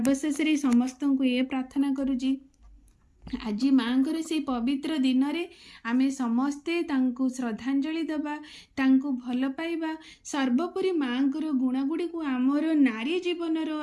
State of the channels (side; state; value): both; identical; correlation 1.00